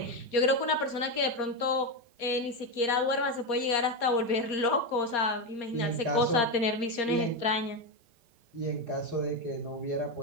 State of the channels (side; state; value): left; late; 4.9 ms